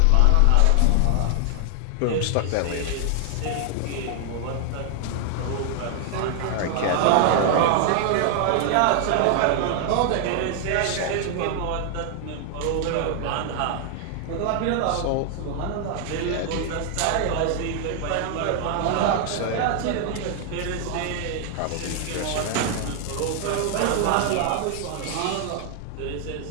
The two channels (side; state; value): both; different; correlation 0.00